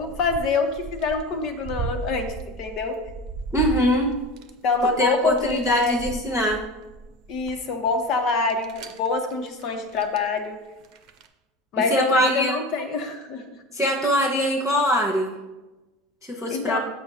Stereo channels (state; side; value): normal; both; correlation 0.31